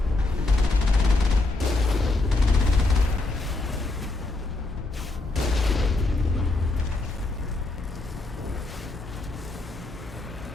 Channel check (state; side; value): quieter; right; 3.1 dB